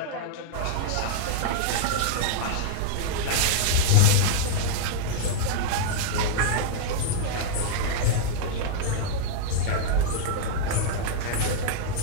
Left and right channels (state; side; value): different; both; correlation -0.01